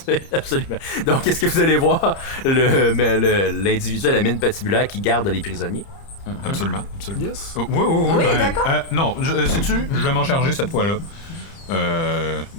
c'est absolument. Donc, est-ce que vous allez voir l'individu à la mine patibulaire qui garde les prisonniers? Absolument, absolument. Yes. Oui, Oui, d'accord. non, sais-tu, je vais m'en charger cette fois-là.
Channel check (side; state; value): right; late; 30 ms